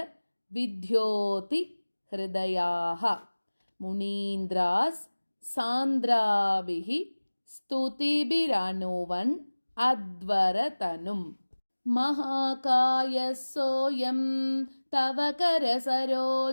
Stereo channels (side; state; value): both; inverted; correlation -1.00